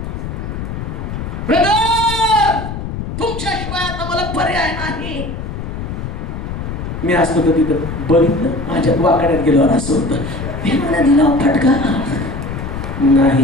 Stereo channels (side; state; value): left; noise; rumble, 6 dB below the sound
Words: ब्रदर, तुमच्याशिवाय आता मला पर्याय नाही. मी असतो तर तिथं बघितलं, माझ्या वाकड्यात गेल्यावर असं होतं. देवाने दिला फटका